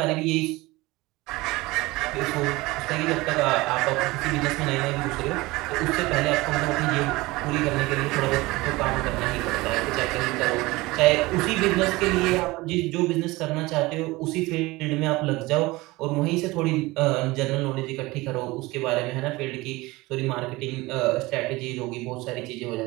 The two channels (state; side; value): quieter; left; 21.1 dB